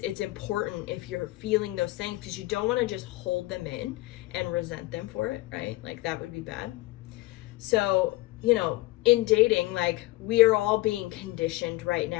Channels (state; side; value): quieter; right; 19.3 dB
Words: important if you're feeling those things, because you don't want to just hold them in and resent them for it, right? Like, that would be bad. So, in dating, like, we are all being conditioned right